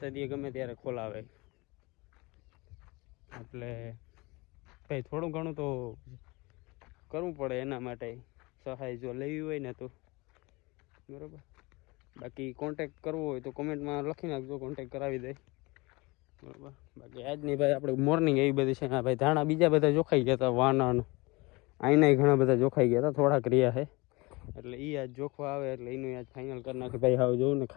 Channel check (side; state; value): right; quieter; 24.4 dB